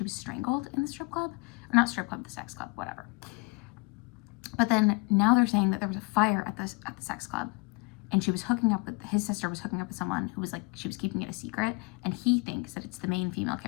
was strangled in the strip club, or not strip club, the sex club, whatever. But then now they're saying that there was a fire at the sex club, and she was hooking up with, his sister was hooking up with someone who was like, she was keeping it a secret, and he thinks that it's the main female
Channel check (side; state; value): right; quieter; 28.3 dB